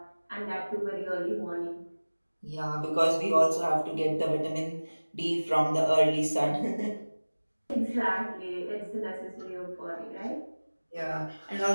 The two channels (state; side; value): inverted; both; correlation -1.00